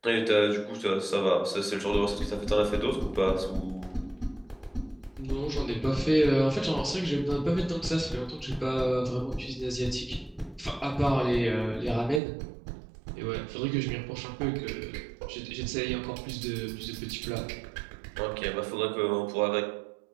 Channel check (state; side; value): drops out; left; at 12.2 s